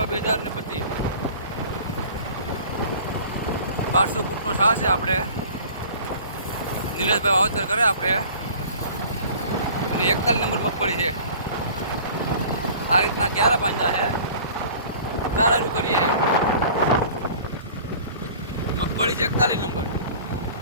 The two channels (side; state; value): both; inverted; correlation -0.45